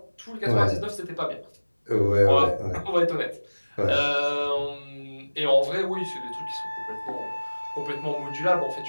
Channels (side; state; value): both; inverted; correlation -1.00